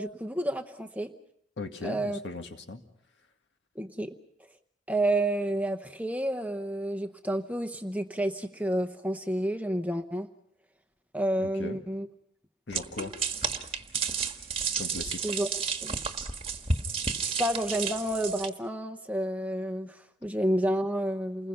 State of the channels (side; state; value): both; normal; correlation 0.71